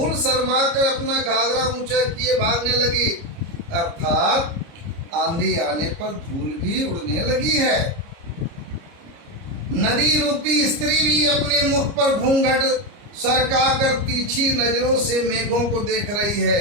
शर्मा कर अपना घाघरा ऊंचा किए भागने लगी, अर्थात आंधी आने पर धूल भी उड़ने लगी है। नदी रूपी स्त्री भी अपने मुख पर घूंघट सरका कर तीखी नजरों से मेघों को देख रही है।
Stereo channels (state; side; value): late; left; 30 ms